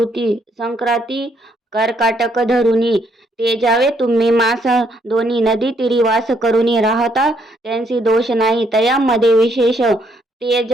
संक्रांती कर्काटक धरुनी ते जावे तुम्ही मास दोन्ही नदी तीरी वास करुनी राहता त्यांची दोष नाही तयामध्ये विशेष ते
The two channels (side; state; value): both; normal; correlation 0.71